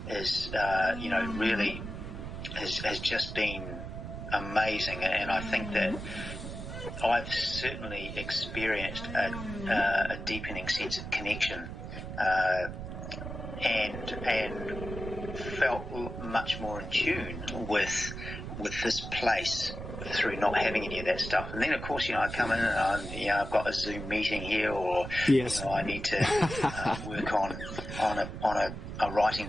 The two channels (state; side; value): noise; right; rumble, 8 dB below the sound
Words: is really has just been amazing, and I think that I've certainly experienced a deepening sense of connection, and felt much more in tune with this place through not having any of that stuff. And then, of course, I come in and I've got a Zoom meeting here, or yes. I need to work on a writing